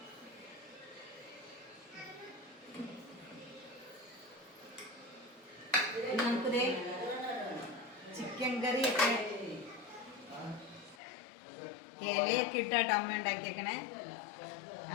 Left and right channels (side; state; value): right; drops out; at 11.0 s